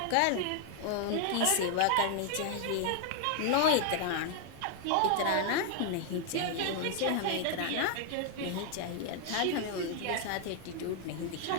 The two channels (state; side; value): different; both; correlation 0.00